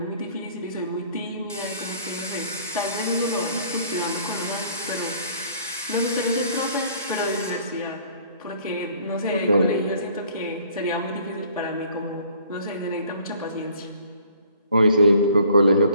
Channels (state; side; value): inverted; both; correlation -0.56